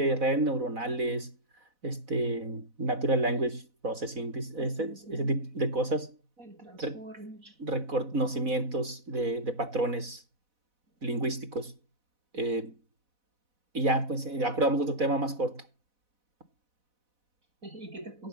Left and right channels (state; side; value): late; left; 4.1 ms